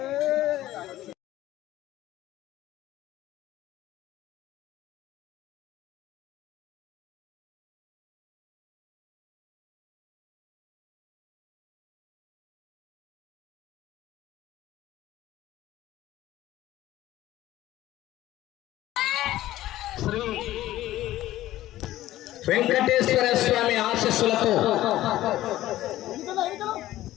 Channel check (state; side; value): quieter; right; 14.9 dB